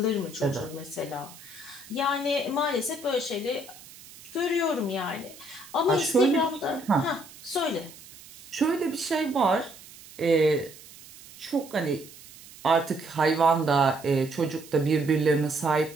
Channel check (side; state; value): right; noise; hiss, 19 dB below the sound